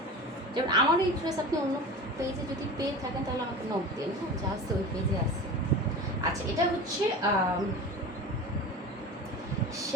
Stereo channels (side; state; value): both; normal; correlation 0.33